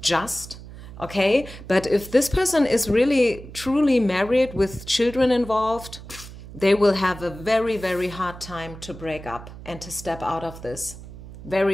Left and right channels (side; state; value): right; noise; hum, 15 dB below the sound